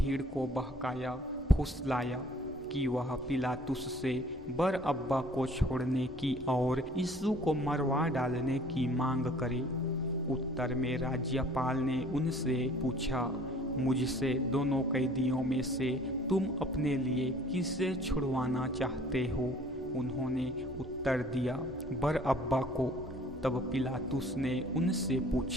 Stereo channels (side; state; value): both; normal; correlation 0.53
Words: को बहकाया, फुसलाया कि वह पिलातुस से बरअब्बा को छोड़ने की और यीशु को मरवा डालने की मांग करे। उत्तर में राज्यपाल ने उनसे पूछा, मुझसे दोनों कैदियों में से तुम अपने लिए किसे छुड़वाना चाहते हो? उन्होंने उत्तर दिया, बरअब्बा को। तब पिलातुस ने उनसे